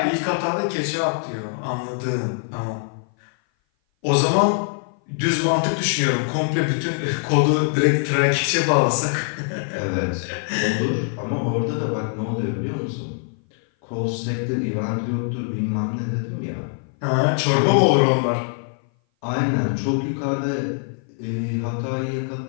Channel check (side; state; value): right; silent; 57 dB below the other